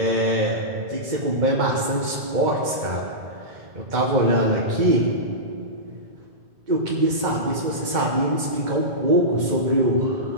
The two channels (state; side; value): late; left; 2.0 ms